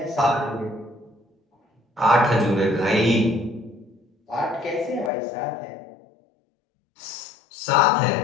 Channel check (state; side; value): drops out; right; at 5.1 s